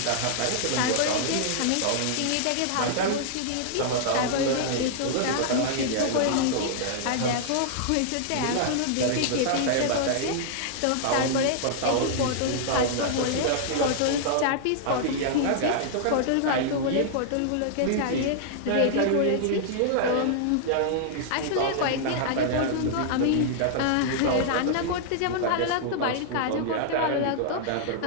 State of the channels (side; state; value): both; different; correlation -0.01